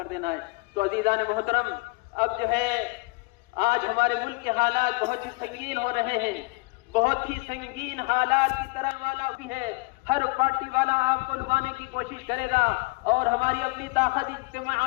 دینا ہے. تو عزیزان محترم, اب جو ہے آج ہمارے ملک کے حالات بہت ہی سنگین ہو رہے ہیں, بہت ہی سنگین حالات کی طرح والا بھی ہے. ہر پارٹی والا آپ کو لگانے کی کوشش کرے گا, اور ہماری اپنی طاقت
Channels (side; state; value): right; quieter; 26.1 dB